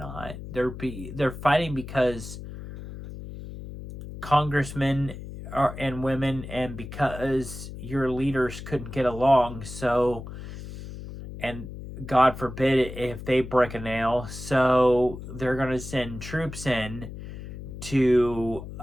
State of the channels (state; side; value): noise; left; hum, 11 dB below the sound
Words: They're fighting because congressmen and women, and because your leaders couldn't get along. So, and God forbid if they break a nail, so they're going to send troops in to